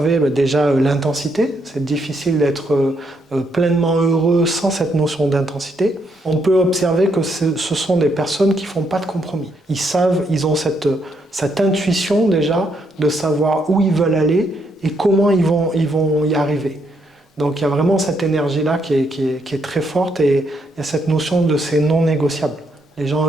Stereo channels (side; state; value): both; normal; correlation 0.76